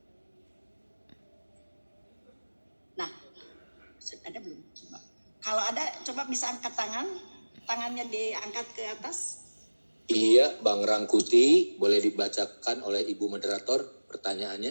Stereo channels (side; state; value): both; inverted; correlation -1.00